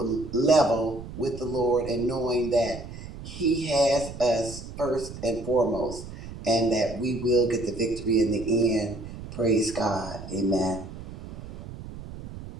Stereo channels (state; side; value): noise; right; rumble, 12 dB below the sound